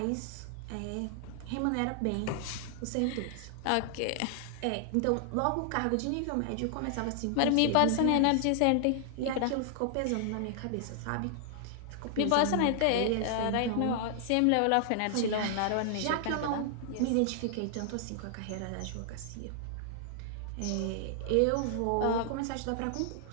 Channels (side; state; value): both; different; correlation 0.00